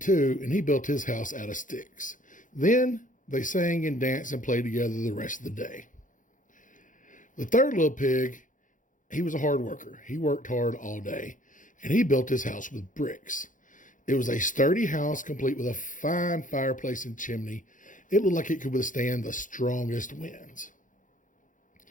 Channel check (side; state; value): right; late; 0.38 ms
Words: and he built his house out of sticks. Then they sang and danced and played together the rest of the day. The third little pig, he was a hard worker. He worked hard all day, and he built his house with bricks. It was a sturdy house complete with a fine fireplace and chimney. It looked like it could withstand the strongest winds.